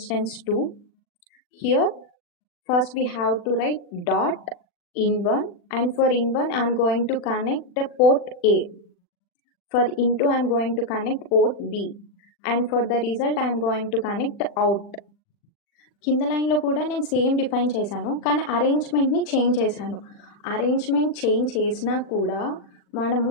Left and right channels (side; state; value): right; late; 40 ms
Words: 2. Here first we have to write dot in1, and for in1 I am going to connect the port A. For in2 I am going to connect port B, and for the result I am going to connect out. కింద లైన్లో కూడా నేను same define చేశాను, కానీ అరేంజ్మెంట్ని change చేశాను. Arrangement change చేసినా కూడా మనము